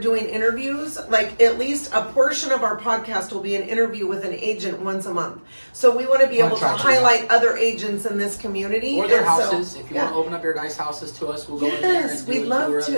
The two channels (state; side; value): inverted; both; correlation -1.00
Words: doing interviews. Like at least a portion of our podcast will be an interview with an agent once a month. So we want to be able to highlight other agents in this community. Or their houses. If you want to open up your nice houses to us, we'll go in there and do we'd love